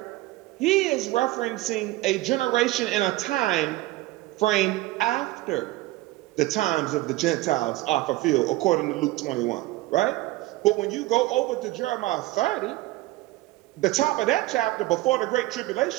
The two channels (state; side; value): quieter; left; 18.3 dB